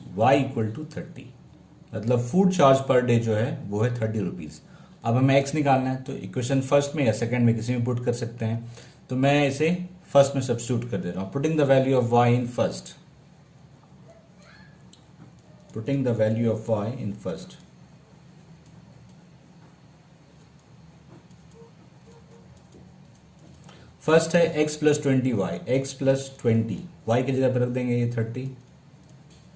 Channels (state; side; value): identical; both; correlation 1.00